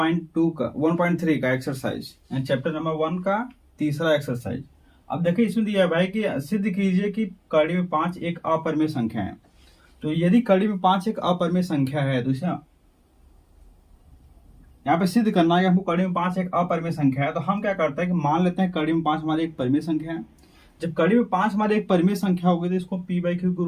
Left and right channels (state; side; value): identical; both; correlation 1.00